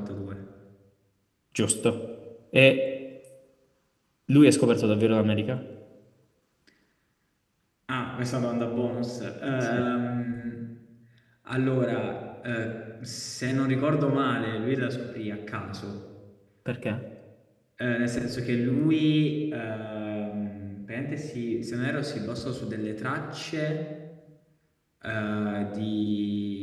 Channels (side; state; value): both; identical; correlation 1.00